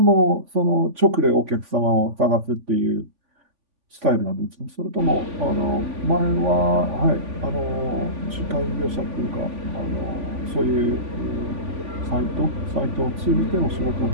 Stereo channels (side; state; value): left; late; 3.5 ms